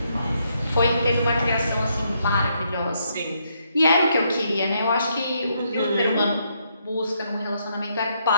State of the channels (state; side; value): inverted; both; correlation -0.75